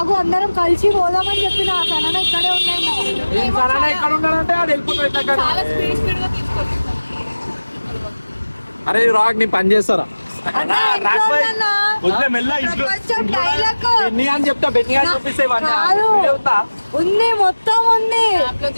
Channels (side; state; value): both; inverted; correlation -1.00